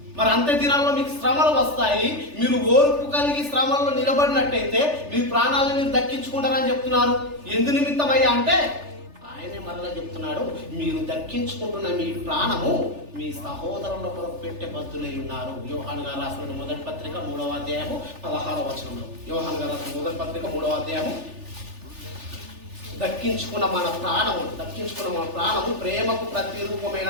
మరి అంత్య దినాల్లో మీకు శ్రమలు వస్తాయి, మీరు ఓర్పు కలిగి శ్రమల్లో నిలబడినట్టయితే మీ ప్రాణాలను మీరు దక్కించుకుంటారని చెప్తున్నారు. ఎందు నిమిత్తమయ్యా అంటే ఆయనే మరలా చెప్తున్నాడు, మీరు దక్కించుకుంటున్న మీ ప్రాణము మీ సహోదరుల కొరకు పెట్టే బద్దులై ఉన్నారు. యోహాను గారు రాసిన మొదటి పత్రిక 3వ అధ్యాయము 16వ వచనంలో. యోహాను గారు రాసిన మొదటి పత్రిక 3వ అధ్యాయము. దక్కించుకున్న మన ప్రాణము ప్రేమకు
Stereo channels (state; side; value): late; left; 3.4 ms